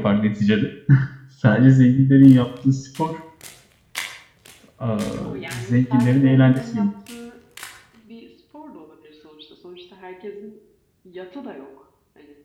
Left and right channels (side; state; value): both; identical; correlation 1.00